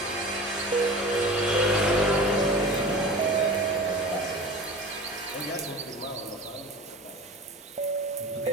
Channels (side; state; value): both; normal; correlation 0.37